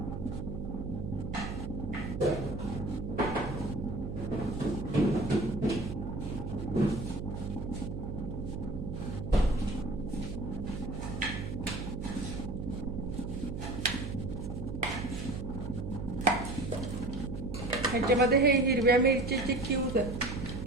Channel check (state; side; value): noise; right; hum, 5 dB below the sound